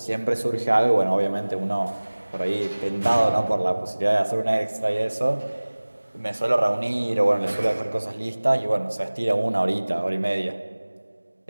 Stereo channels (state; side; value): inverted; both; correlation -1.00